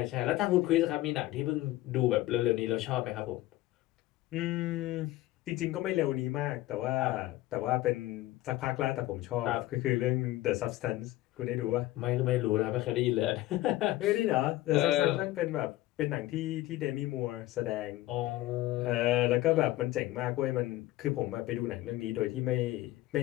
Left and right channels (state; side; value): quieter; right; 16.6 dB